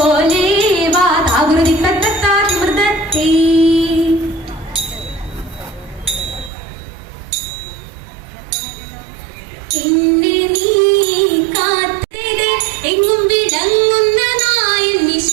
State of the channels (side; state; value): left; drops out; at 6.5 s